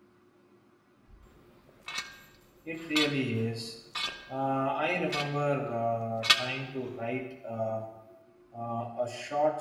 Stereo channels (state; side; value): identical; both; correlation 1.00